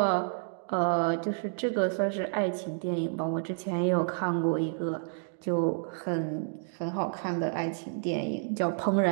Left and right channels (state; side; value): silent; left; digital silence